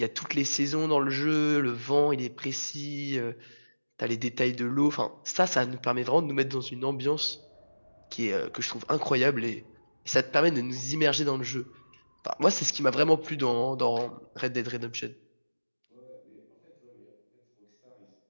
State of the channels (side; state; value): both; inverted; correlation -1.00